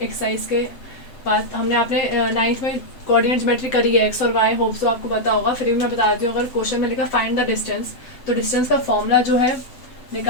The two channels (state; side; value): late; right; 7.8 ms